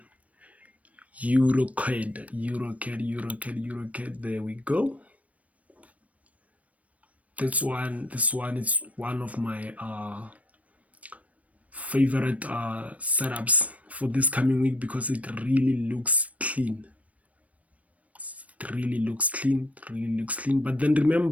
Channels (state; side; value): late; left; 0.067 ms